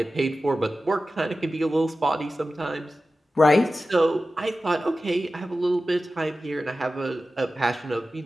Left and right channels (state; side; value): normal; both; correlation 0.94